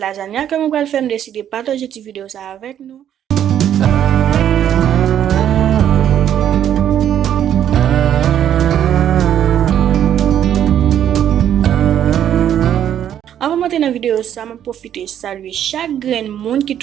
que je vais faire. Décider de partager cette vidéo ça avec nous. Avant de monter dans la vidéo, ça m'a profité de saluer chaque grain monde qui est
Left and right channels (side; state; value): left; quieter; 10.2 dB